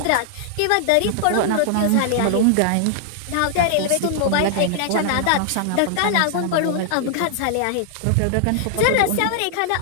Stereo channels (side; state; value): both; different; correlation -0.01